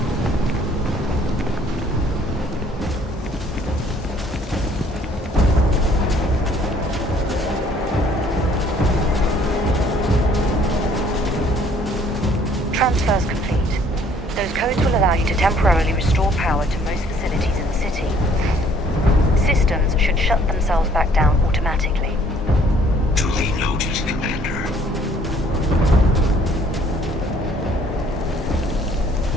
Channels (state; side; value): normal; both; correlation 0.60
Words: Transfer's complete. Those codes will allow you to temporarily restore power to most facilities in the city. Systems should shut themselves back down automatically. Duly noted, Commander.